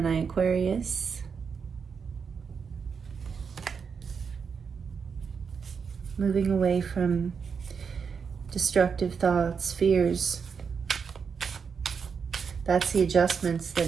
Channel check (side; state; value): left; quieter; 6.0 dB